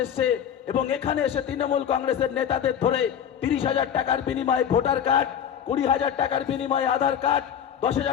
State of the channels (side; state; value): right; quieter; 8.8 dB